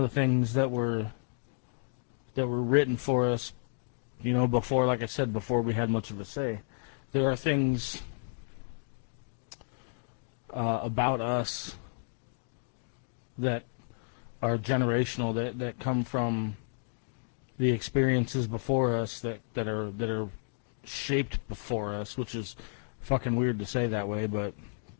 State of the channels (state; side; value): silent; right; digital silence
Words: the things that were written for us, you know, before, like I said, before we had much of a say. There are things about us that are generational, that come from the experiences before us, that are shaped before us, which is fucking weird to say that way, but